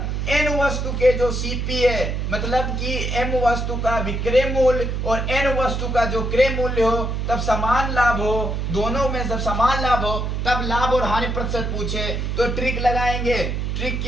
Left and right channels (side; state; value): right; noise; hum, 2 dB below the sound